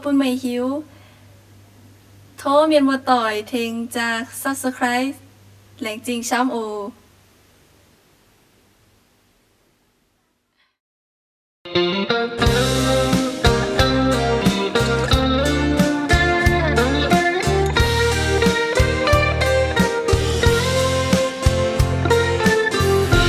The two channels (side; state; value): both; identical; correlation 1.00